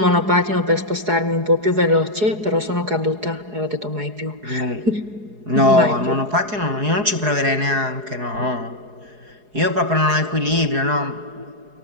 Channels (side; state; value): left; late; 4.8 ms